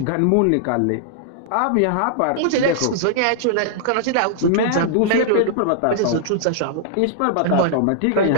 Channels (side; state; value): both; different; correlation -0.01